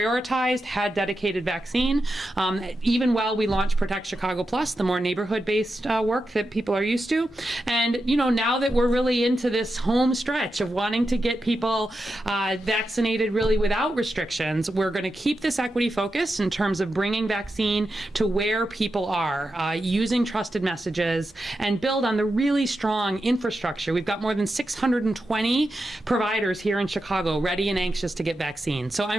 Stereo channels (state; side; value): normal; both; correlation 0.89